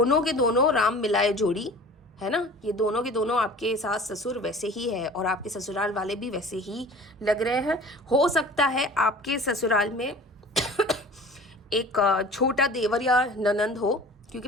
के दोनों राम मिलाए जोड़ी है ना, ये दोनों के दोनों आपके सास ससुर वैसे ही है और आपके ससुराल वाले भी वैसे ही लग रहे हैं। हो सकता है आपके ससुराल में एक छोटा देवर या ननंद हो, क्योंकि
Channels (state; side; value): normal; both; correlation 0.43